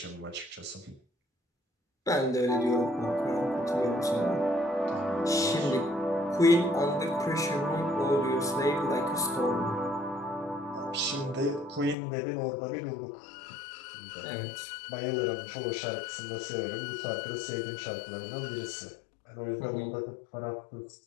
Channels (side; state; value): right; drops out; at 12.0 s